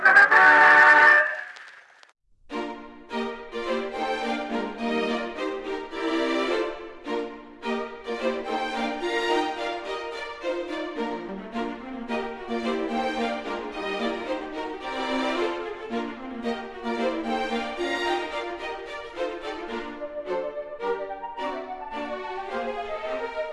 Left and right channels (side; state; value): both; identical; correlation 1.00